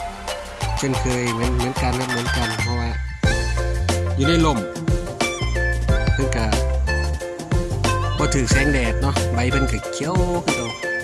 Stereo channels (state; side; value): identical; both; correlation 1.00